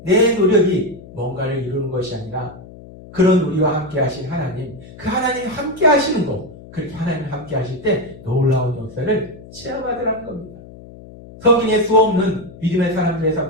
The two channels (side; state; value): left; noise; hum, 18 dB below the sound